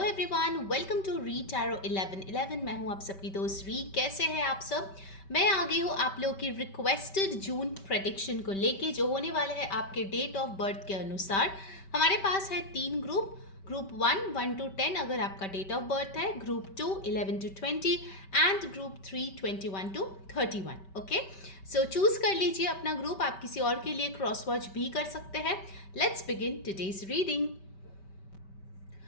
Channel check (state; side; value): late; right; 5.2 ms